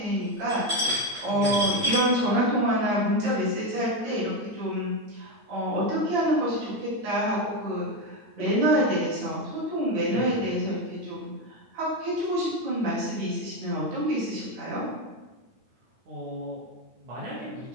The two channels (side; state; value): left; late; 9.1 ms